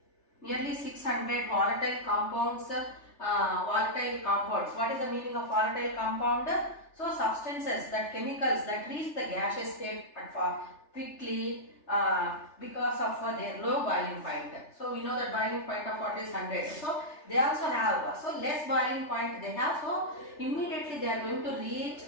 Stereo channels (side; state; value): right; late; 3.3 ms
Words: volatile compounds. What is the meaning of volatile compound? So substances, that chemicals that reach the gaseous state quickly because of their low boiling point. So we know that boiling point of water is 100. So they also have less boiling point they have. So immediately they are going to reach,